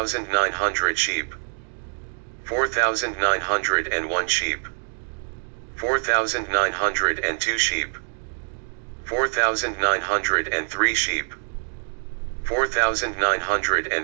sheep, 4,901 sheep, 4,902 sheep, 4,903 sheep,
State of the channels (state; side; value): silent; left; digital silence